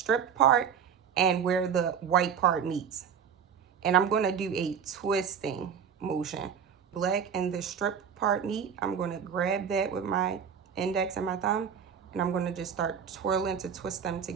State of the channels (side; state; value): left; quieter; 7.4 dB